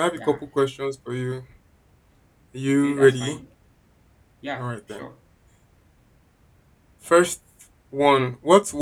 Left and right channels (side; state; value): both; identical; correlation 1.00